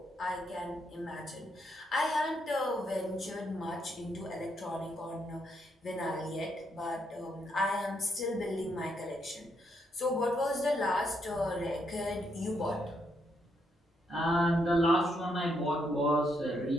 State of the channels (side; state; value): both; normal; correlation 0.77